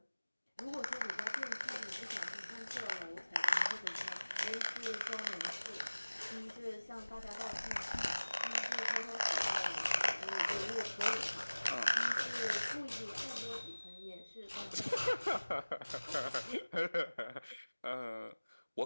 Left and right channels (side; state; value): both; inverted; correlation -1.00